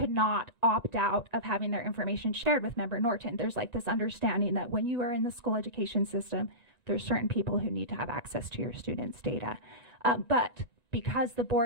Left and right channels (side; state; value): right; late; 1.9 ms